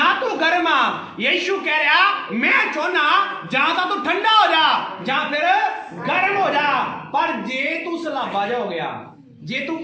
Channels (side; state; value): both; identical; correlation 1.00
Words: ਤੂੰ ਗਰਮ ਆ। ਯਿਸੂ ਕਹਿ ਰਿਹਾ ਮੈਂ ਚਾਹੁੰਦਾ ਜਾਂ ਤਾਂ ਤੂੰ ਠੰਡਾ ਹੋ ਜਾ ਜਾਂ ਫਿਰ ਗਰਮ ਹੋ ਜਾ। ਪਰ ਜੇ ਤੂੰ ਸਲਾਬਾ ਜਾ ਹੋ ਗਿਆ, ਜੇ ਤੂੰ